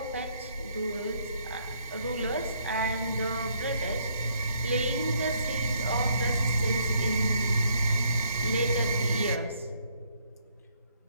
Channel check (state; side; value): inverted; both; correlation -0.69